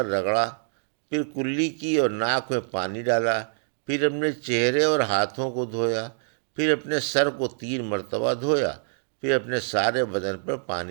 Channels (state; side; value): silent; left; digital silence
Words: رگڑا، پھر کلی کی اور ناک میں پانی ڈالا، پھر اپنے چہرے اور ہاتھوں کو دھویا، پھر اپنے سر کو 3 مرتبہ دھویا، پھر اپنے سارے بدن پر